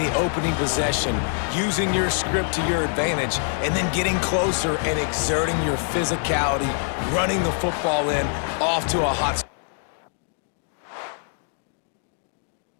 opening possession, using your script to your advantage, and then getting closer and exerting your physicality, running the football in, off to a hot start.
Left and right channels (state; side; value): silent; right; 62 dB below the other